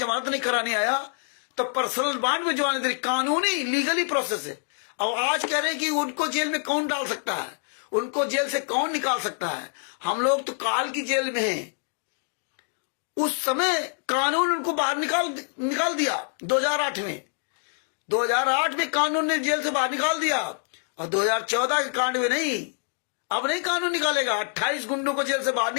नहीं कराने आया तो पर्सनल बॉन्ड में जमानत दे, कानूनी लीगली प्रोसेस है। और आज कह रहे हैं कि उनको जेल में कौन डाल सकता है, उनको जेल से कौन निकाल सकता है। हम लोग तो काल की जेल में हैं। उस समय कानून उनको बाहर निकाल दिया 2008 में। 2008 में कानून ने जेल से बाहर निकाल दिया और 2014 के कांड में नहीं, अब नहीं कानून निकालेगा। 28 गुंडों को जेल से बाहर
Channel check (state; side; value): silent; right; 57 dB below the other